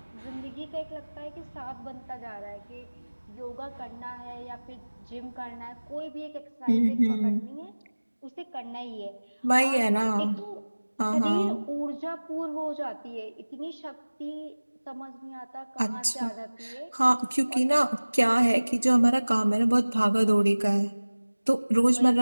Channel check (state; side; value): inverted; both; correlation -1.00